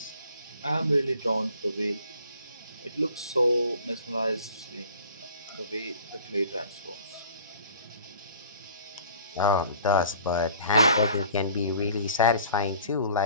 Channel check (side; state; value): both; inverted; correlation -0.49